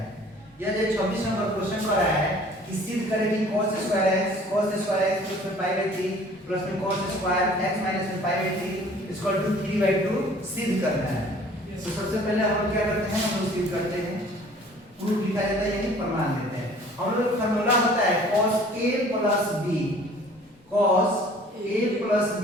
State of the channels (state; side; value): normal; both; correlation 0.51